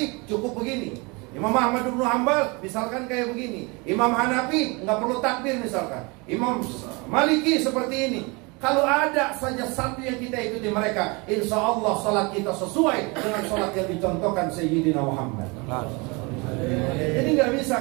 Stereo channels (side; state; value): left; quieter; 28.1 dB